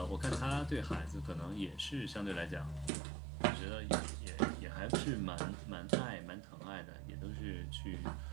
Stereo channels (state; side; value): drops out; left; at 2.9 s